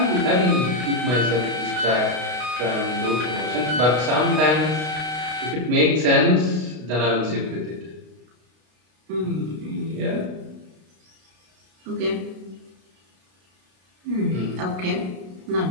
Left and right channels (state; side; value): late; left; 32 ms